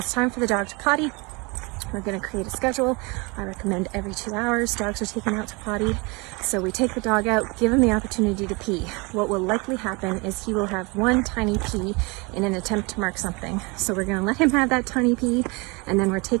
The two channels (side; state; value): left; quieter; 28.1 dB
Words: time for the dog to potty, we're going to create a schedule. I recommend every 2 hours dogs are taken out to potty. So we take the dog out, give him the opportunity to pee. What will likely happen is he will have one tiny pee in an attempt to mark something. So we're going to let him have that tiny pee, and then we're